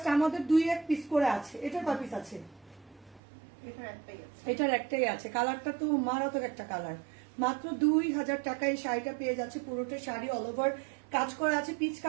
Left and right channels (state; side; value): drops out; left; at 3.2 s